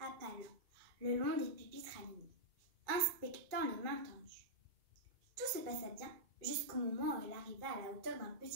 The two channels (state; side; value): late; left; 2.4 ms